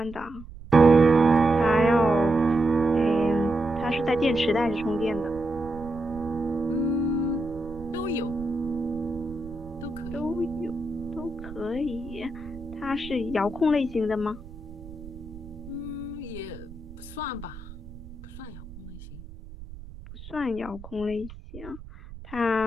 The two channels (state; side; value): noise; right; rumble, 15 dB below the sound